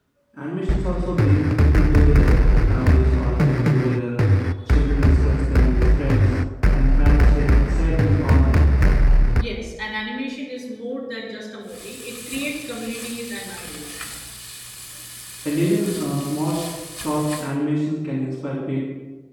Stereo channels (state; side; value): identical; both; correlation 1.00